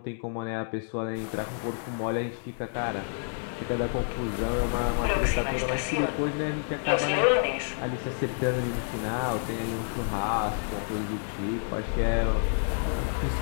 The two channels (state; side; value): silent; right; digital silence